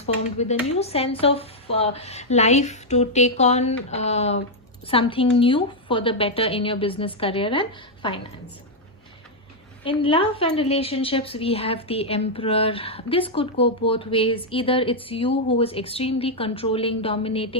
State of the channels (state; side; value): normal; both; correlation -0.02